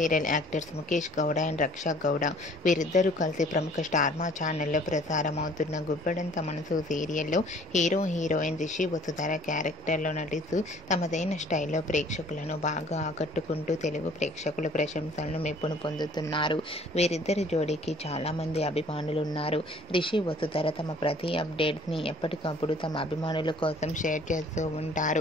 actors Mukesh Gowda and Raksha Gowda వీరిద్దరూ కలిసి ప్రముఖ star మా ఛానల్లో ప్రసారం అవుతున్న గుప్పెడంత మనసు సీరియల్లో హీరో హీరోయిన్ రిషి వసుధర క్యారెక్టర్లో నటిస్తూ తమదైన స్టైల్లో ప్రేక్షకులను బాగా ఆకట్టుకుంటూ తెలుగు ప్రేక్షకుల ప్రశంసలను మెప్పును పొందుతున్నారు. వీరిద్దరి జోడీకి చాలామంది అభిమానులు ఉన్నారు. రిషి వసుధర తమ ప్రతి అప్డేట్స్ని ఎప్పటికప్పుడు తమ అభిమానుల కోసం షేర్ చేస్తూ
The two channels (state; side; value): normal; both; correlation 0.54